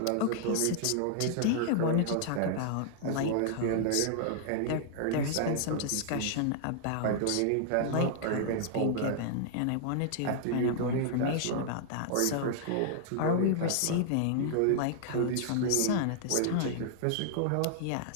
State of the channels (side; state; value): both; different; correlation -0.01